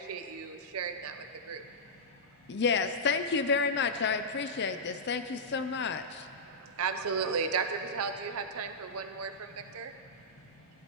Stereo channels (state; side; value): normal; both; correlation -0.12